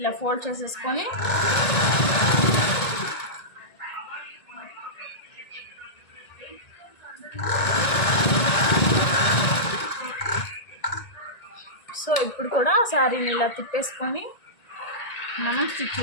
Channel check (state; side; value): late; right; 1.8 ms